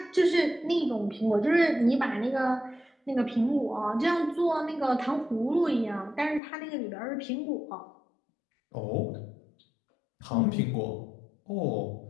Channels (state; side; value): drops out; right; at 6.4 s